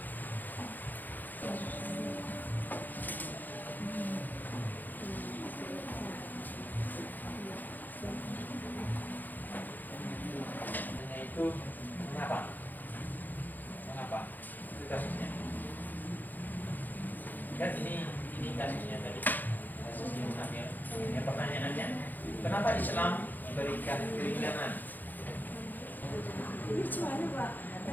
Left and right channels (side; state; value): right; late; 0.086 ms